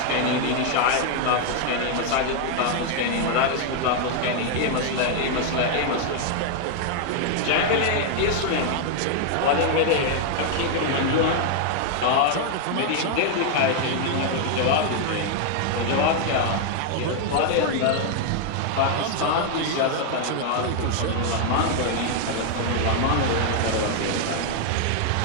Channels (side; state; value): both; different; correlation 0.00